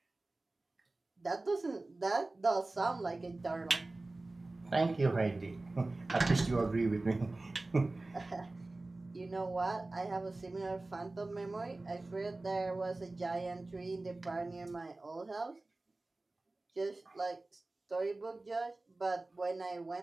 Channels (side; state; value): left; quieter; 3.0 dB